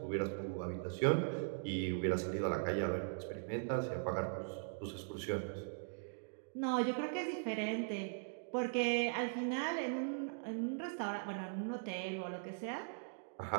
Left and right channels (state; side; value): silent; left; digital silence